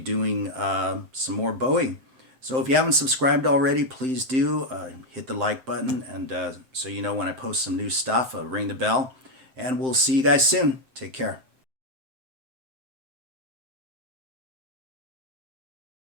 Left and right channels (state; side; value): late; left; 7.7 ms